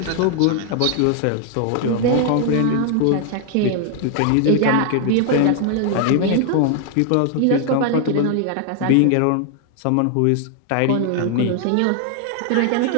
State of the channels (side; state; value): both; different; correlation 0.00